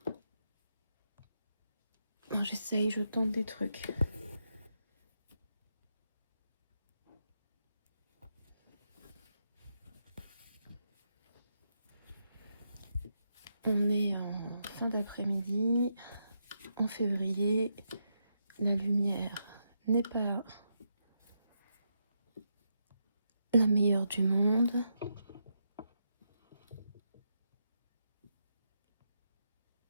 J'essaye, je tente des trucs. On est en fin d'après-midi, en février. La lumière n'est pas la meilleure du monde.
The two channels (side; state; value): both; inverted; correlation -0.83